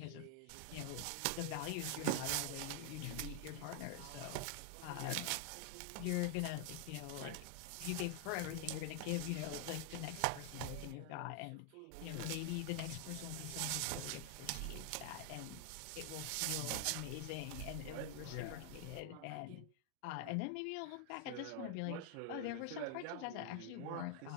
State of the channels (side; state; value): both; different; correlation 0.00